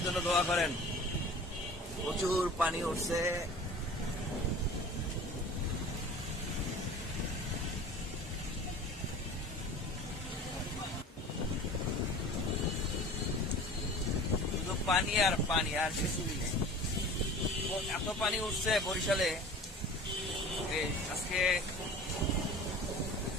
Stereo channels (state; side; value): normal; both; correlation 0.41